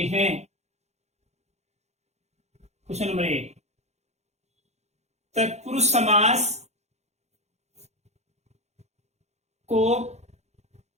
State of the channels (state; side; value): late; left; 0.32 ms